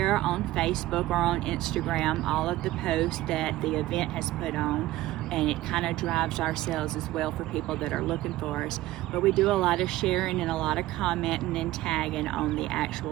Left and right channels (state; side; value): quieter; left; 16.5 dB